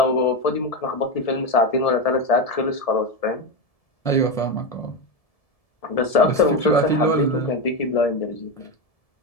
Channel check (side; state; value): right; late; 1.7 ms